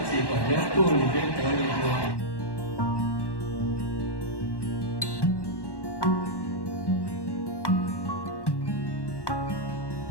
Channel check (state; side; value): late; right; 1.1 ms